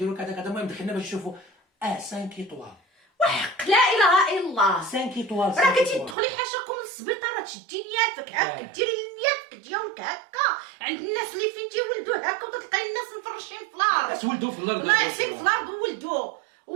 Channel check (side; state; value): left; drops out; at 6.2 s